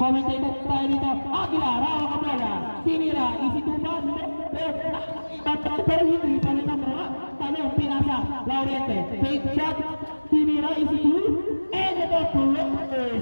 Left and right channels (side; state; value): both; inverted; correlation -1.00